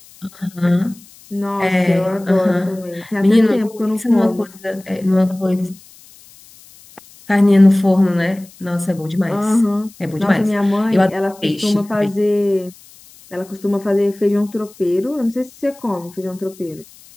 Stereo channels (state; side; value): noise; left; hiss, 24 dB below the sound